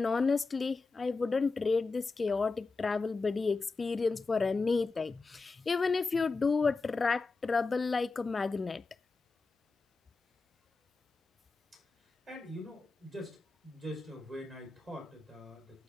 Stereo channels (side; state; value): right; quieter; 4.0 dB